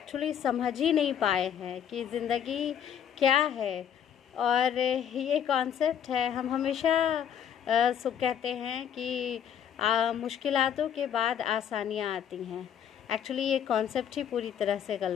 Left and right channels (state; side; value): quieter; right; 8.8 dB